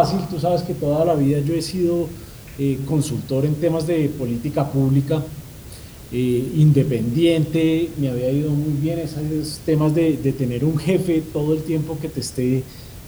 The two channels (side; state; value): both; identical; correlation 1.00